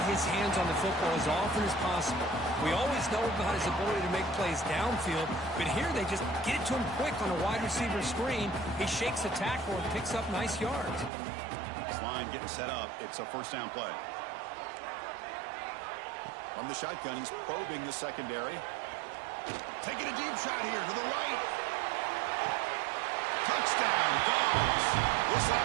his hands on the football as often as possible. We always know about his ability to make plays downfield, but here they just get it to him quick on a wide receiver screen. He shakes the tackle and picks up nice yards. This line getting set up. It's a 1st down play. From the shotgun, he's probing the secondary. Taking a deep shot here to the right. Touchdown, Dogs. This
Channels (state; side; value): drops out; left; at 11.1 s